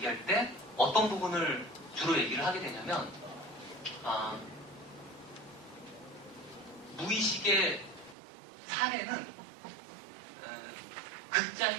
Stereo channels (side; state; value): left; drops out; at 8.2 s